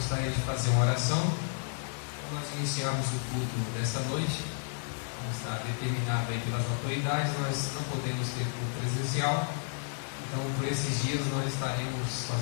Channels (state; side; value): silent; right; 57 dB below the other